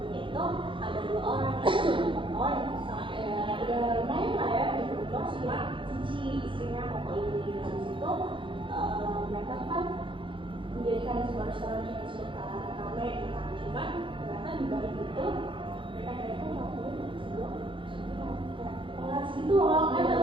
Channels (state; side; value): late; left; 0.25 ms